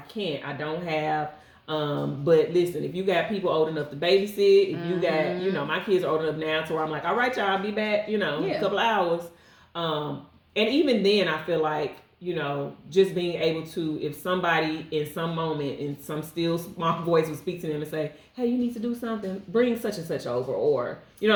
don't have. But listen, if you got people old enough to babysit, if you got, my kids are old enough now to where I'm like, all right, y'all, I'll be back, in a couple of hours. And even then, I feel like, just being able to, if somebody in some moment in some still small voice would speak to them and say, hey, you need to do something, bring such and such over, or, you know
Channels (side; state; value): both; identical; correlation 1.00